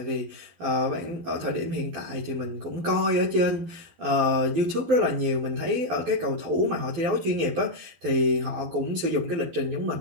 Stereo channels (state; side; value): late; left; 12 ms